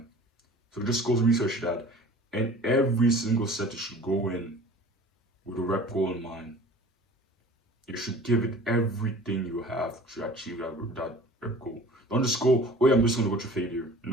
So just go research that, and every single set you should go in with a rep goal in mind. You should give it everything you have to achieve that rep goal. Don't just go, oh yeah, I'm just gonna go to failure.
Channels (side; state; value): both; normal; correlation 0.44